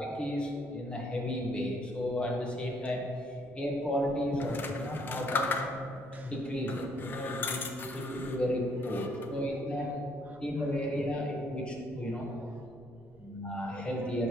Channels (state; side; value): noise; right; rumble, 26 dB below the sound